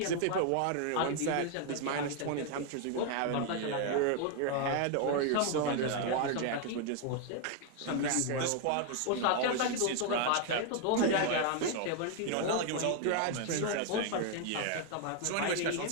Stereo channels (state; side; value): different; both; correlation 0.01